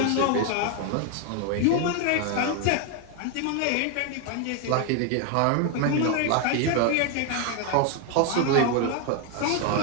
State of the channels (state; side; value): different; both; correlation 0.01